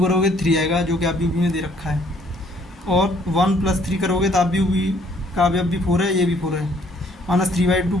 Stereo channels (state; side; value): normal; both; correlation 0.63